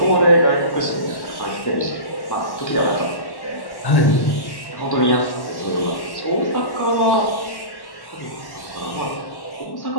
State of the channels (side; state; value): right; late; 1.1 ms